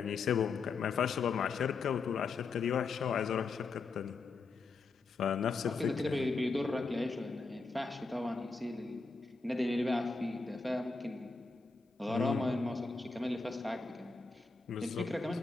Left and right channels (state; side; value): quieter; right; 4.2 dB